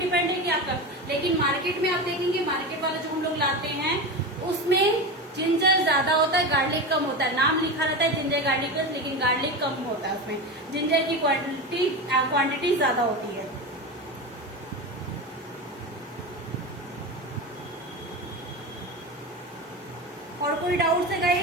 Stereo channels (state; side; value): normal; both; correlation 0.23